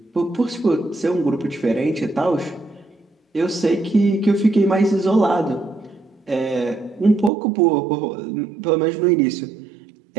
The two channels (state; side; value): drops out; left; at 7.3 s